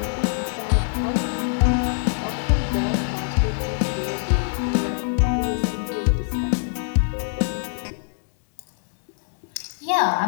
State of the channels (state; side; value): silent; right; digital silence